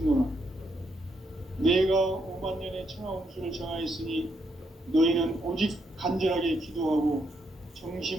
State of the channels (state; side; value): normal; both; correlation 0.77